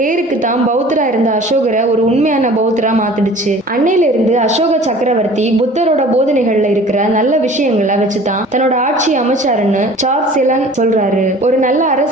தான் பௌத்தரா இருந்த அசோகரை ஒரு உண்மையான பௌத்தரா மாத்திடுச்சு. அன்னையில இருந்து அசோக சக்கரவர்த்தி புத்தரோட போதனைகள்ல இருக்கிற நல்ல விஷயங்களை வச்சுதான் தன்னோட ஆட்சி அமைச்சாருன்னு சார்ல்ஸ் எலன் சொல்றாரு. ஒரு நல்ல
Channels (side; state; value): both; normal; correlation 0.46